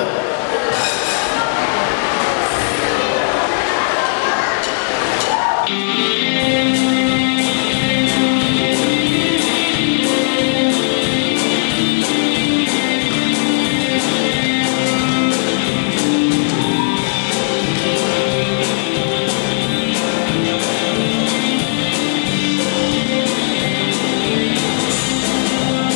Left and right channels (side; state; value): right; silent; digital silence